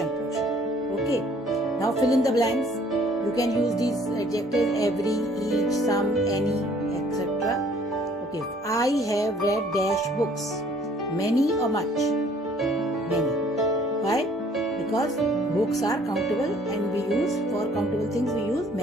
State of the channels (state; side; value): normal; both; correlation 0.58